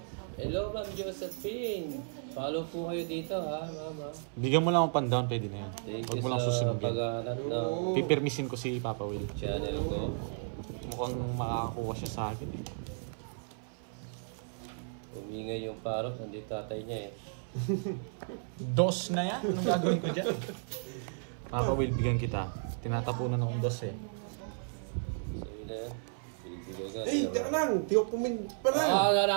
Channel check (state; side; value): silent; left; 55 dB below the other